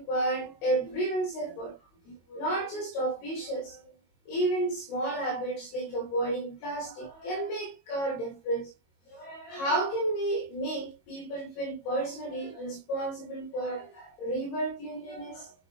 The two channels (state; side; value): late; right; 22 ms